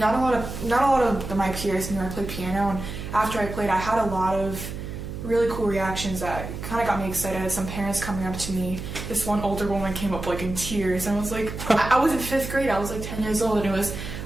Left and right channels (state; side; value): noise; right; hum, 8 dB below the sound